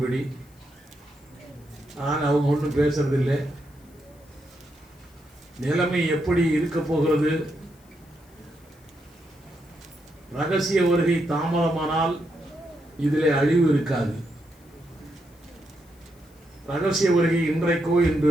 ஆனால் அவங்க ஒன்றும் பேசுறதில்லை. நிலைமை எப்படி இருக்க போகிறது? ரகசிய வருகை தாமதமானால் இதிலே அழிவு இருக்காது. ரகசிய வருகை இன்றைக்கோ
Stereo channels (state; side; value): noise; left; hiss, 30 dB below the sound